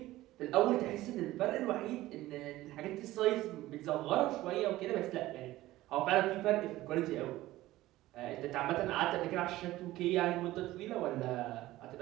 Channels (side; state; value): left; quieter; 16.5 dB